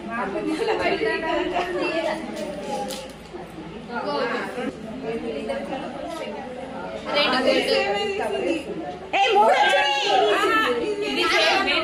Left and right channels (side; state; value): both; identical; correlation 1.00